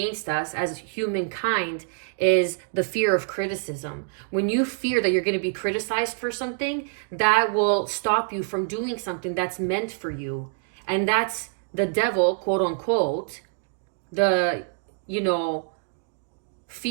us as humankind, is the fear of criticism. When you fear that you're going to be criticized for something, that will stop you from doing something that's meant for you. And that's the devil, quote unquote, the,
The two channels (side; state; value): left; silent; digital silence